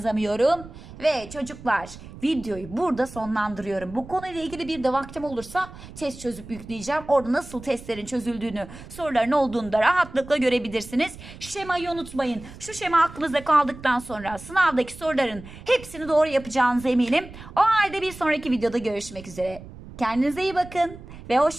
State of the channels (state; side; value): noise; right; rumble, 16 dB below the sound